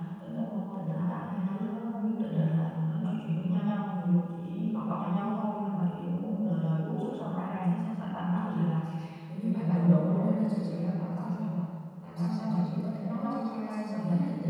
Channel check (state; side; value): identical; both; correlation 1.00